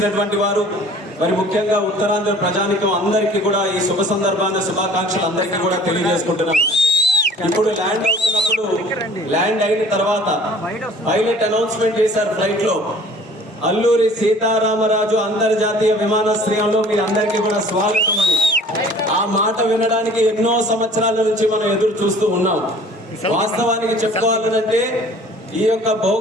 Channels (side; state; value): both; normal; correlation 0.50